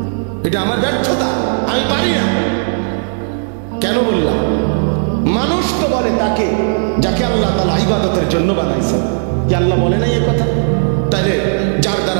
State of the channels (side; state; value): left; silent; digital silence